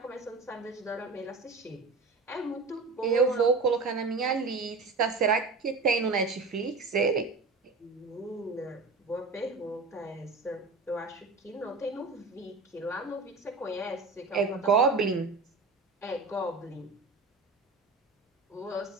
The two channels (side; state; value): left; quieter; 3.8 dB